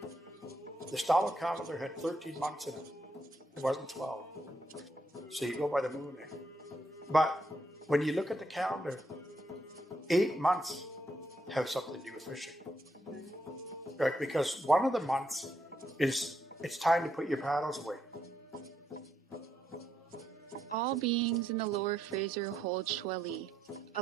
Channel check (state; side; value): normal; both; correlation 0.78